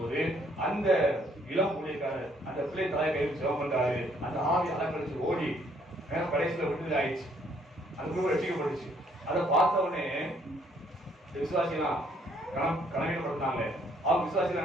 போது அந்த இளம் ஊழியக்காரர் அந்த பிள்ளை தலையை கையில் செலவு பண்றாரு. அந்த ஆவி அலங்கரிச்சு ஓடி கடைசியில விடுதலை ஆயிடுச்சு. அந்த குடும்பம் ரசிக்கப்பட்டுச்சு. அதை பார்த்த உடனே விசுவாசிலாம் கனவீனப்படுத்தினாங்க. அவங்க விசுவாசிகள்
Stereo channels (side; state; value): both; normal; correlation 0.66